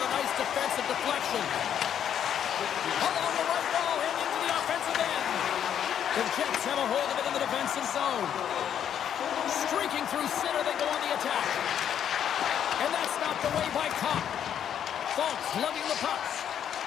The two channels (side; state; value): right; quieter; 9.3 dB